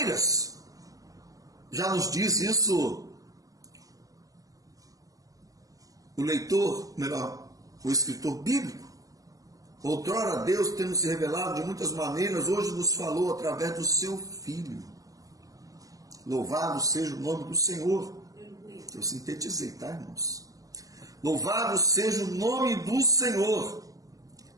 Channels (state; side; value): late; left; 0.17 ms